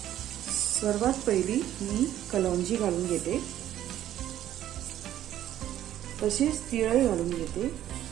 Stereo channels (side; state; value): left; quieter; 12.2 dB